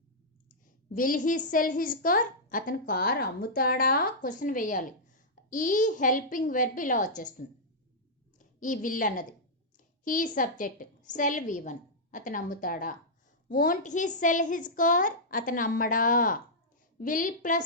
Will he sell his car. అతను కార్ అమ్ముతాడా క్వశ్చన్ వేయాలి. ఈ హెల్పింగ్ వెర్బ్ ఇలా వచ్చేస్తుంది, ఈ విల్ అన్నది. He subject, sell V1. అతను అమ్ముతాడా. Won't he sell his car. అతను అమ్మడా. Will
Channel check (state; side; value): normal; both; correlation -0.09